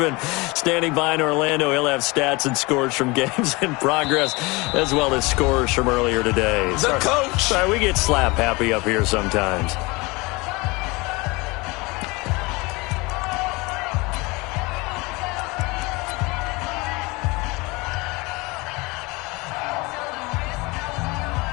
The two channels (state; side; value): quieter; right; 24.8 dB